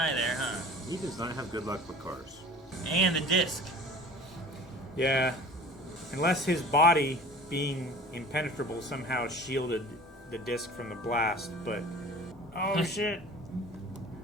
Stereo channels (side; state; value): both; normal; correlation 0.43